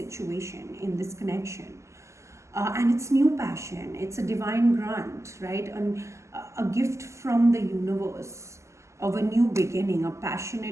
in this connection. And it's new passion. It's a divine grant, right? And a gift from the universe of a new beginning, a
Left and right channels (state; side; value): late; left; 0.14 ms